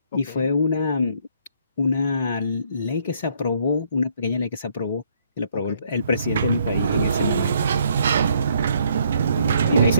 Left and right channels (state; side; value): inverted; both; correlation -0.68